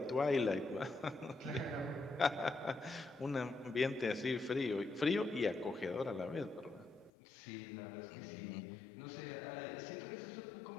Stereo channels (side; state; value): right; drops out; at 7.1 s